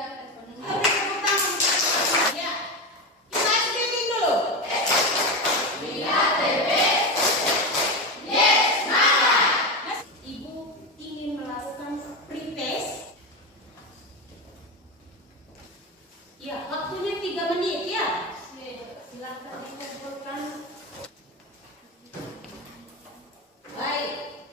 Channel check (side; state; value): both; normal; correlation 0.17